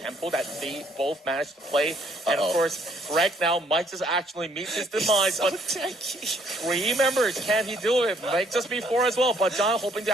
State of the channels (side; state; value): both; normal; correlation 0.66